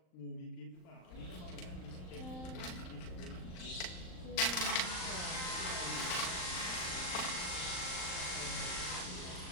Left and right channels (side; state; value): right; late; 39 ms